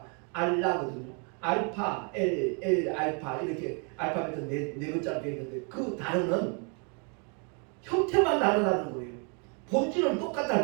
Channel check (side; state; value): left; quieter; 37.2 dB